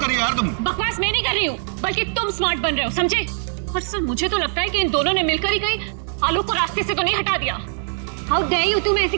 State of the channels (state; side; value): silent; left; 65 dB below the other